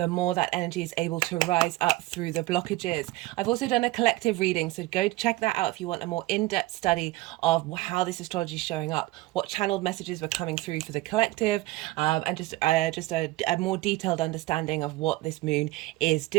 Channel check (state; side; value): quieter; left; 18.7 dB